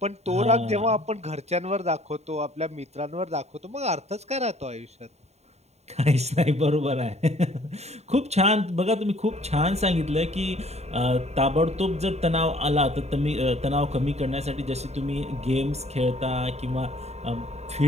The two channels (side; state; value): left; late; 0.32 ms